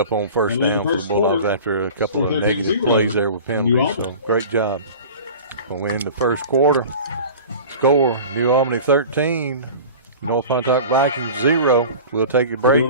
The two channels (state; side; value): inverted; both; correlation -0.38